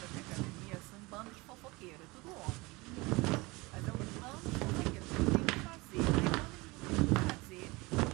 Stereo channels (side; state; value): left; quieter; 23.8 dB